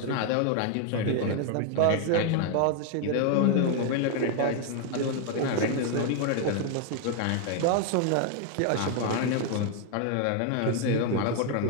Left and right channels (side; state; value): both; different; correlation 0.01